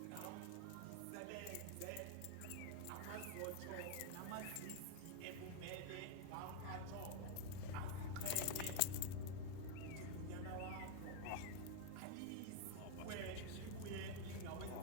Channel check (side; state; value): both; different; correlation 0.00